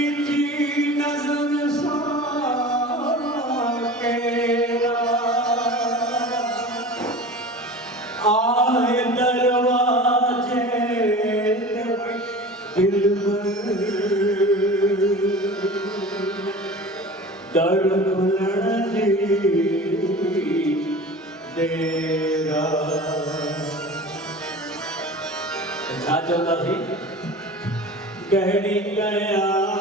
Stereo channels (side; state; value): both; normal; correlation 0.36